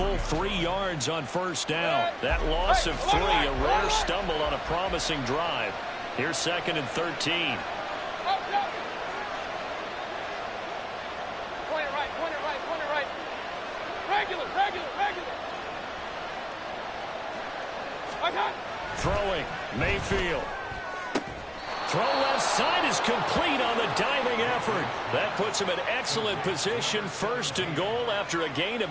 3 yards on 1st down. That loss of 3, a rare stumble on a promising drive. Here's 2nd and 13. Point it right, point it right, point it right. Regular. Throwing, Mayfield. Throw left side is complete on the diving effort. That puts him in excellent position, 1st and goal after a gain of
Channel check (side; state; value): both; identical; correlation 1.00